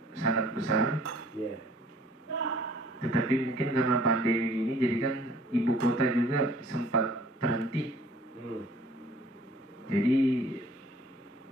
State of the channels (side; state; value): both; normal; correlation 0.55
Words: sangat besar. Tetapi mungkin karena pandemi ini jadi kan ibu kota juga sempat terhenti. Jadi